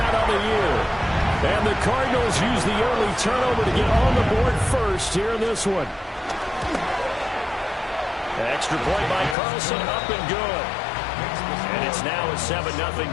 of the year. And the Cardinals use the early turnover to get on the board first here in this one. Extra point by Carlson, up and good. And it's now a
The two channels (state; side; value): drops out; right; at 9.3 s